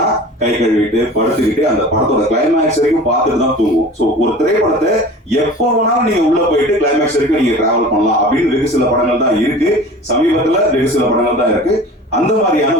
கை கழுவிட்டு படுத்துக்கிட்டு அந்த படத்தோட கிளைமேக்ஸ் வரைக்கும் பார்த்துட்டு தான் தூங்குவோம். ஸோ ஒரு திரைப்படத்தை எப்போ வேணாலும் நீங்க உள்ள போயிட்டு கிளைமேக்ஸ் வரைக்கும் நீங்க டிராவல் பண்ணலாம் அப்படின்னு வெகு சில படங்கள் தான் இருக்கு. சமீபத்துல வெகு சில படங்கள் தான் இருக்கு. அந்த மாதிரியான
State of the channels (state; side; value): normal; both; correlation 0.40